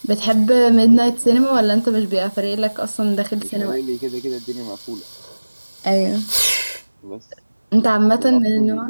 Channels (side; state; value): both; inverted; correlation -1.00